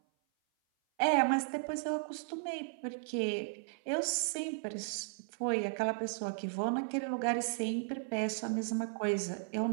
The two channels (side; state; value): left; silent; 54 dB below the other